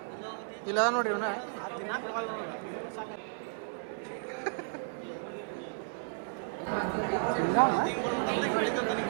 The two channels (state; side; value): silent; left; 55 dB below the other